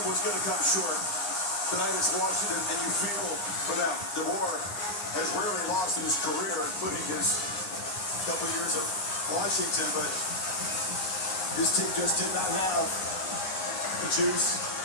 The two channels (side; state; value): right; late; 11 ms